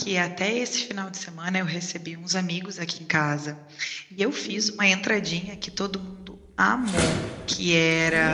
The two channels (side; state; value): both; identical; correlation 1.00